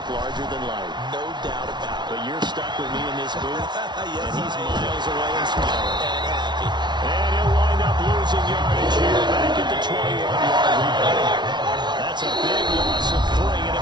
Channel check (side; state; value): left; late; 0.21 ms